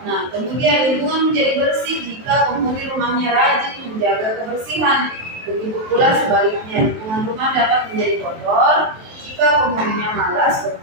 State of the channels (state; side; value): late; left; 23 ms